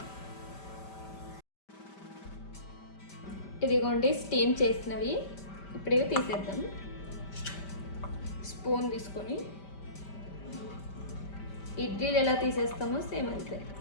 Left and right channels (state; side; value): late; right; 5.1 ms